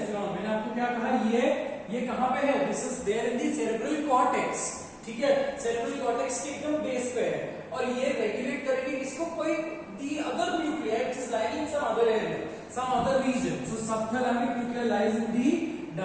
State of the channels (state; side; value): identical; both; correlation 1.00